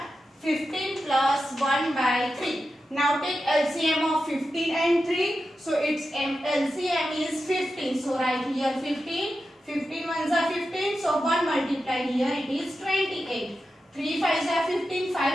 15 plus 1 by 3. Now take LCM of 15 and 3. So its LCM is 15. So write here 15. 15 ones are 15. So 1 multiplied here it is 28. 3 5s are 15.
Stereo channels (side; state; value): both; normal; correlation 0.90